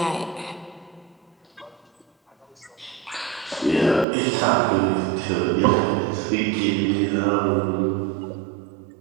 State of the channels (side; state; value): left; drops out; at 4.0 s